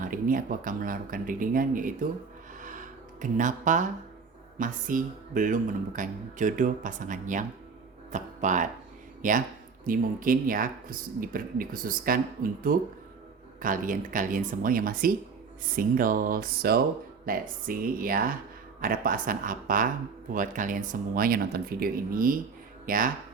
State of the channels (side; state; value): left; quieter; 5.2 dB